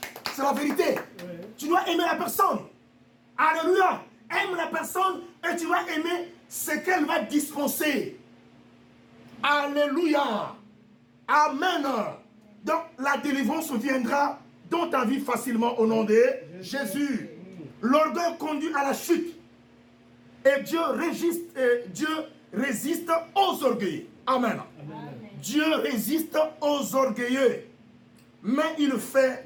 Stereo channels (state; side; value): identical; both; correlation 1.00